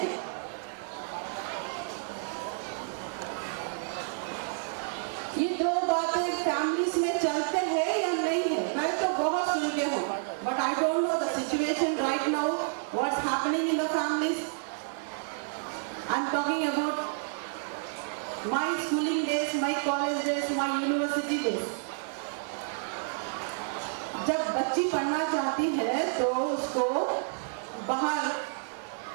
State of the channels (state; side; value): silent; left; digital silence